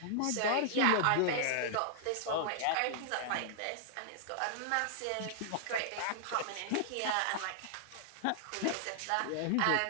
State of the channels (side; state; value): both; different; correlation -0.01